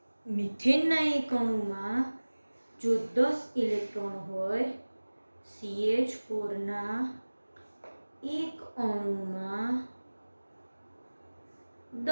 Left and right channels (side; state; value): both; inverted; correlation -1.00